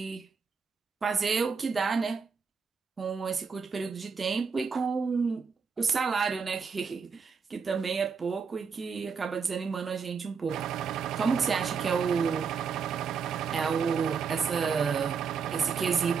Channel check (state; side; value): quieter; left; 5.7 dB